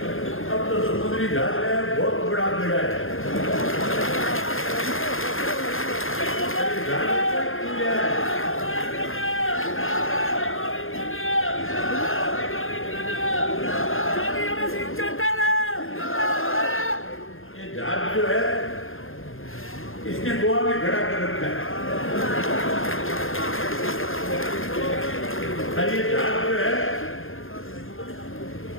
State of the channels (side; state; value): right; late; 0.60 ms